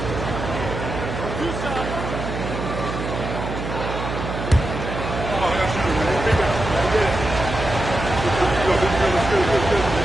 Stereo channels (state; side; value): noise; right; hum, 5 dB below the sound